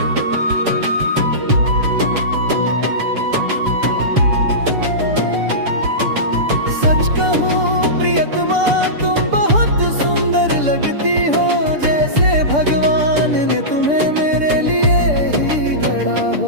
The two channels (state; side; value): late; left; 6.8 ms